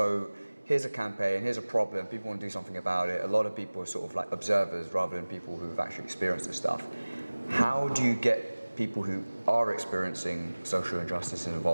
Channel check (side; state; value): both; inverted; correlation -1.00